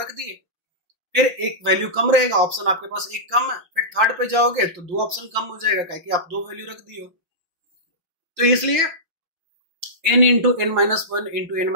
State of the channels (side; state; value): left; late; 5.8 ms